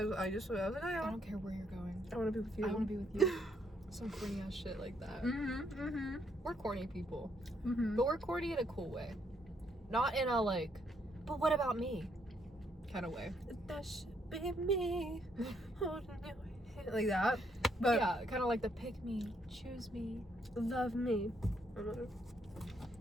was like, oh, yeah. I don't care where you're going. I want to be with you. I want to be with you. Some corny ass shit like that. We're corny people. But we're corny in a cool way. Not in a, like, but what about me kind of way. That should be me. Holding your hand. Like that. But yeah, kind of like the pick me, choose me, love me.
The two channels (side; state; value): both; normal; correlation 0.73